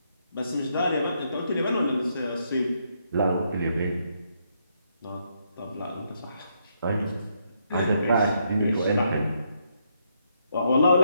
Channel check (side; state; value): both; inverted; correlation -0.76